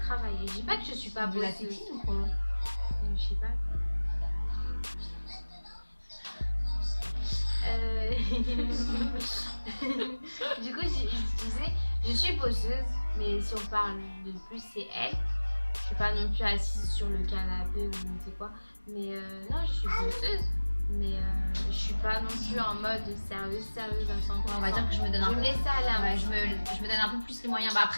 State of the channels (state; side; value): inverted; both; correlation -1.00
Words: Je dis pas que je suis pas de la bosseuse. tétine ou quoi? Je sais pas. Du coup, je disais, je suis bosseuse, mais si on parle de plus, c'est elle. Je suis pas non plus assise sur le canapé ou je ne sais quoi. Mais non, je suis bosseuse. Mais je suis pas non plus en mode sérieuse à 100%. Ouais, on va dire que je me donne un Je peu. me laisse aller. Ouais, je me donne un peu plus les moyens. Bah,